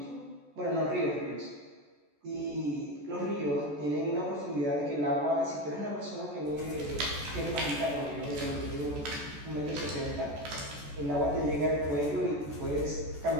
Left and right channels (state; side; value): late; left; 14 ms